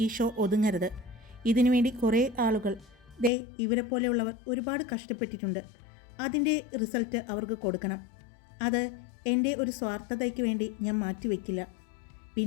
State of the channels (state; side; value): drops out; right; at 3.3 s